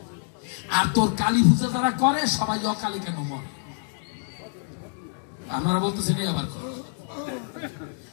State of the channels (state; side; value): silent; right; 61 dB below the other